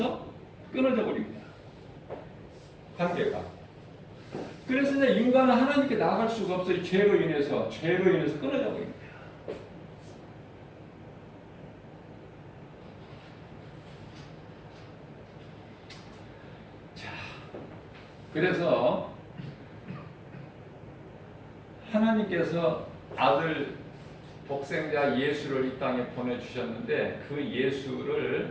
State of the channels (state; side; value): identical; both; correlation 1.00